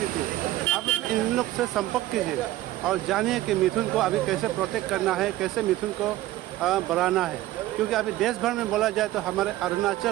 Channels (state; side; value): quieter; left; 15.3 dB